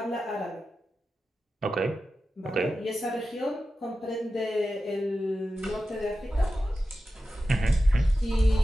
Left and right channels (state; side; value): normal; both; correlation 0.92